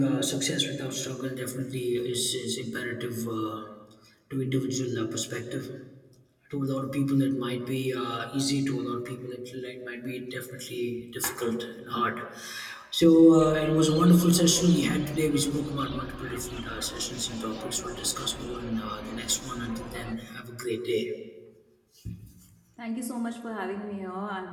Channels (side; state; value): both; identical; correlation 1.00